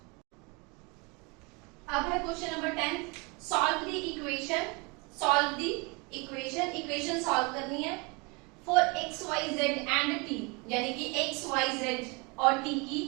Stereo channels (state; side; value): quieter; left; 29.2 dB